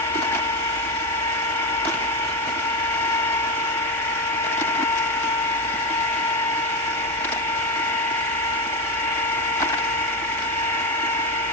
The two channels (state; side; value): normal; both; correlation 0.12